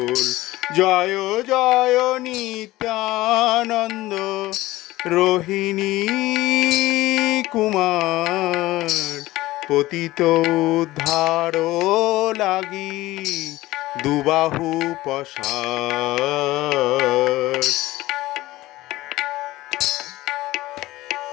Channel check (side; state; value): right; quieter; 17.6 dB